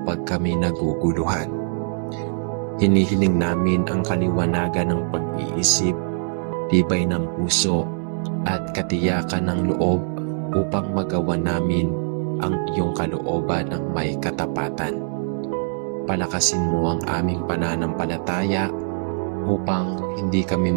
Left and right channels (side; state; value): left; silent; digital silence